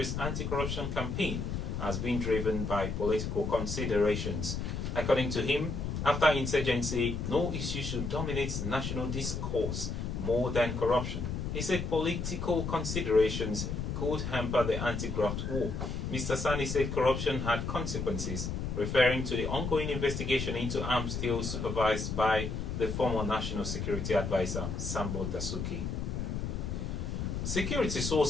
anti-corruption campaign as being driven by political considerations. According to him, after insurgency, no issue should dominate national discourse more than corruption. He said political considerations could hamper the anti-graft war. Mr. Sonny said corruption had consequences, referring to the ongoing investigation into arms deals supervised by the former National Security Advisor, Sambo Dasuki. Security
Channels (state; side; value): noise; left; rumble, 3 dB below the sound